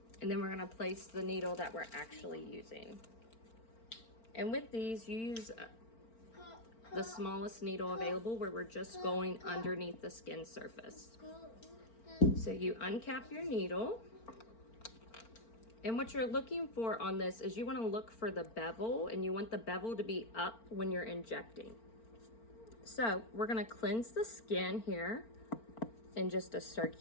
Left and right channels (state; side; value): late; right; 4.4 ms